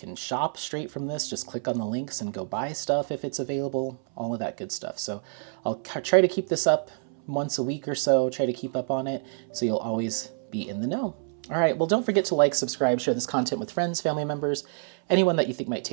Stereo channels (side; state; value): left; silent; 60 dB below the other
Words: shop straight from this. Just click on the links and go buy stuff if it's available, all of that good stuff. So I'll try to keep this up once a week or so, try to keep up on it so you'll always be in the know. All right, well, don't forget to like, subscribe, share this content with friends, family members, anyone that you think might